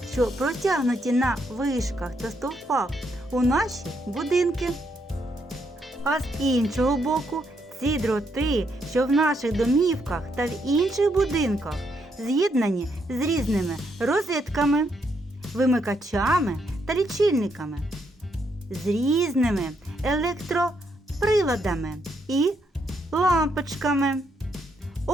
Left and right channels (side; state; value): both; normal; correlation 0.76